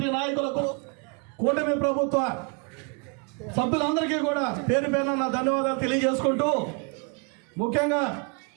నాయకులకు, కూటమి ప్రభుత్వ సభ్యులందరికీ కూడా పేరు పేరున నా ధన్యవాదాలు తెలియజేసుకుంటూ, ముఖ్యంగా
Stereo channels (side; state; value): left; quieter; 34.4 dB